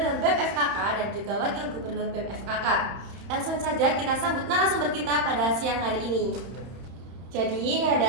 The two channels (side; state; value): left; late; 31 ms